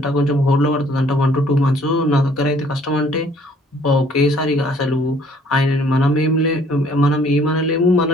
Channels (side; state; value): both; normal; correlation 0.59